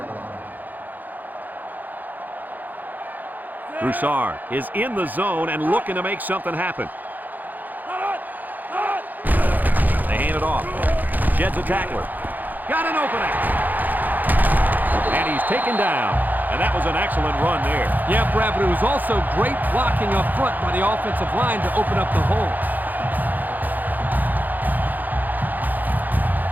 line. Broussard is in the zone and looking to make something happen. They hand it off. Jed's a tackler. Got an opening. And he's taken down. And that was an excellent run there. Yeah, Brad, but it was also great blocking up front by the offensive line to open up the hole.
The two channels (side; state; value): left; late; 0.084 ms